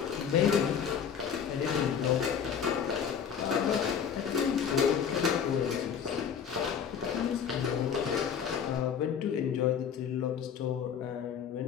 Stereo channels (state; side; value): quieter; right; 7.6 dB